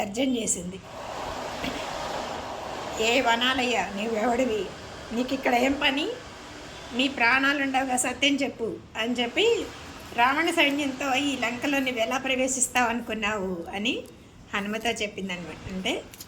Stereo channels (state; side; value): identical; both; correlation 1.00